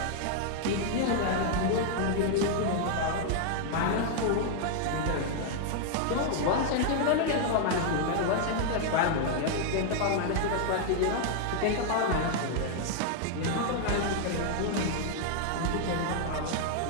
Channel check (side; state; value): both; different; correlation 0.00